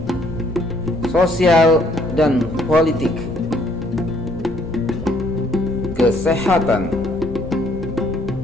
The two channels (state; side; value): noise; left; rumble, 13 dB below the sound